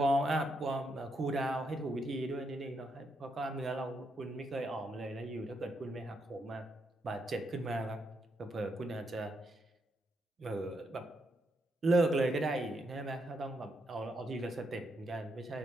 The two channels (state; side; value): normal; both; correlation 0.79